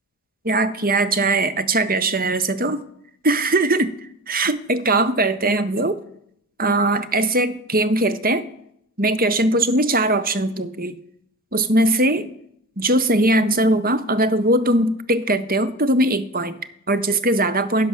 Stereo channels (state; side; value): normal; both; correlation 0.32